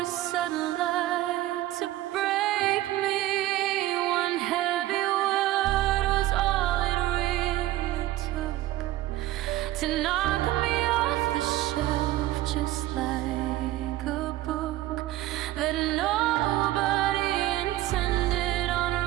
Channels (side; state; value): left; quieter; 15.6 dB